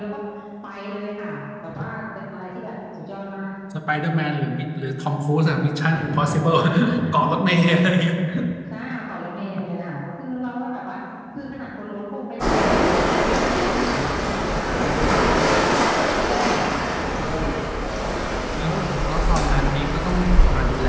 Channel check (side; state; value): both; identical; correlation 1.00